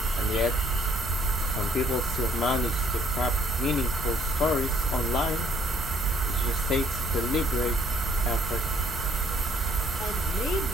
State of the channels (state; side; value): noise; left; rumble, 9 dB below the sound